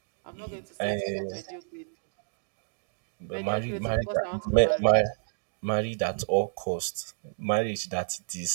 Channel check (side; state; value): left; silent; digital silence